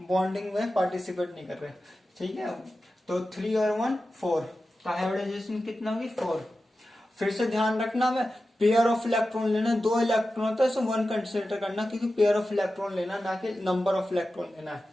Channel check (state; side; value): normal; both; correlation 0.93